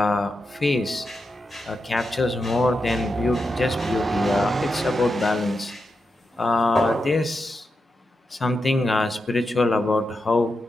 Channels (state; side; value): normal; both; correlation 0.87